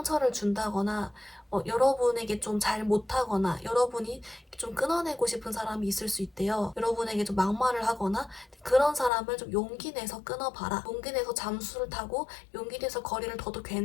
준다거나 여러분에게 좀 잘 못하거나 여러분이 좀 끊어내고 싶은 사람이 있을 수 있대요. 여러분에게 좀 막말을 하거나 그런 사람을 좀 용기 내서 끊어봐라. 용기 내서 잠수를 타고 용기 내서 거리를 둬도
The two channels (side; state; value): right; drops out; at 9.1 s